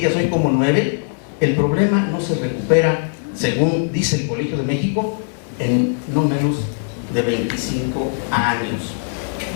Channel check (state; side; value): silent; right; 66 dB below the other